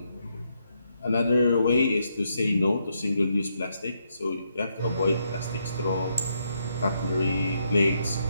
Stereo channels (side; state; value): both; inverted; correlation -0.78